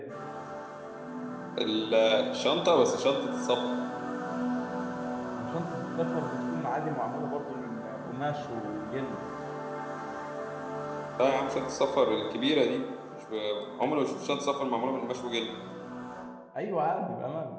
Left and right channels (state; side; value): identical; both; correlation 1.00